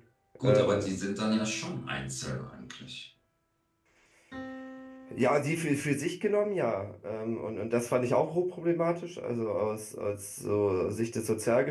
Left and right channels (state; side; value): identical; both; correlation 1.00